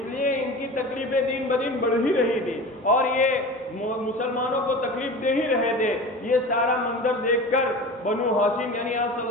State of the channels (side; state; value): both; normal; correlation 0.34